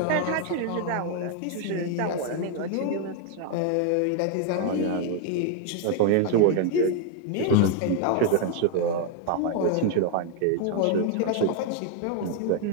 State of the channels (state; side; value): different; both; correlation 0.00